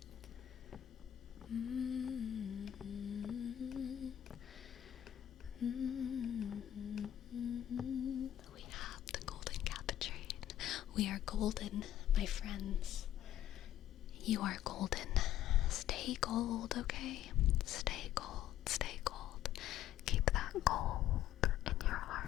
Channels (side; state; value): right; quieter; 12.0 dB